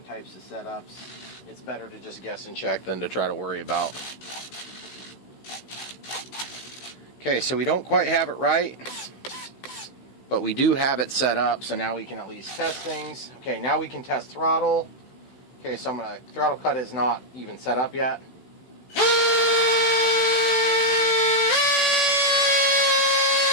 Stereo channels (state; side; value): late; right; 16 ms